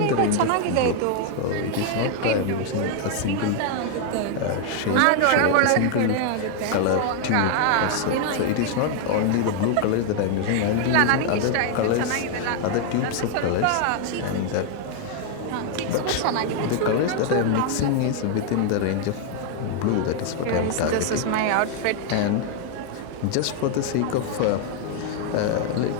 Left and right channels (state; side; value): different; both; correlation 0.00